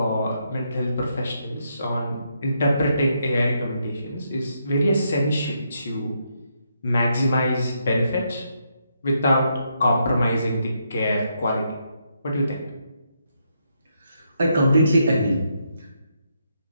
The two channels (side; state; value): both; inverted; correlation -0.78